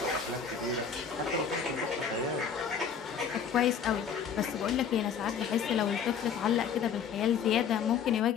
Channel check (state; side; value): quieter; right; 7.1 dB